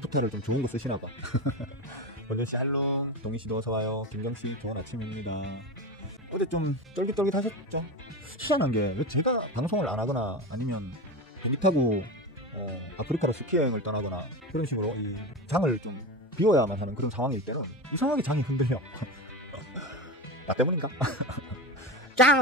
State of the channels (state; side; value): normal; both; correlation 0.22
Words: 좀 좋은 거 쓰시나봐. 원준씨 할롱, 동희씨도 어서와요. 김경씨 좋은 아침입니다. 어제 좀 쫄깃쫄깃 하셨죠? 희한한 게 왜 제가 방송을 안 하거나 아니면 비행기 타고 아프리카로 스키 여행을 떠나거나 그런 식으로 이 장을 좀 비워야만 하는 그런 상황일 때는 이상하게 장이 흔들려. 나 때문인가?